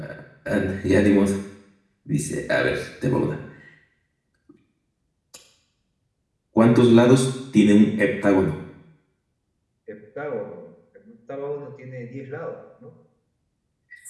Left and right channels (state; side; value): identical; both; correlation 1.00